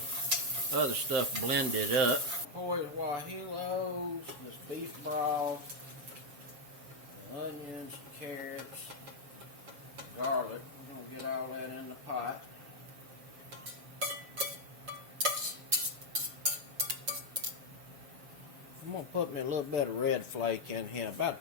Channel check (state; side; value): late; left; 7.3 ms